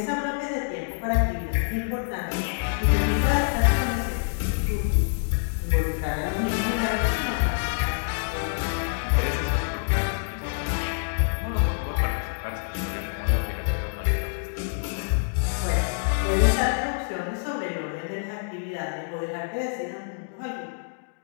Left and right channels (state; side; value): silent; right; digital silence